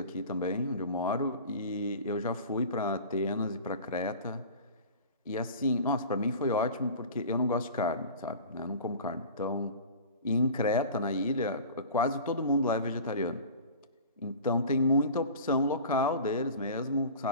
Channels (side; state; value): both; inverted; correlation -0.39